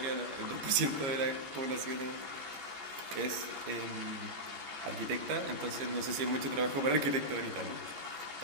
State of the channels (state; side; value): late; left; 15 ms